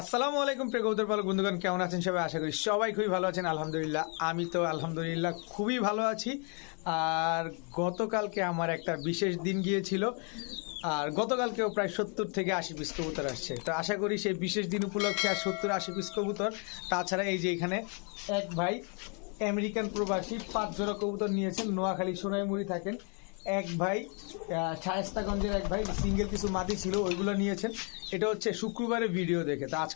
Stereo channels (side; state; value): right; quieter; 37.6 dB